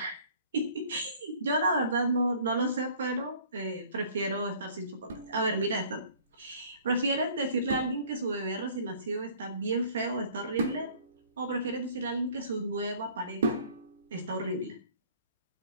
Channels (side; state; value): both; inverted; correlation -0.53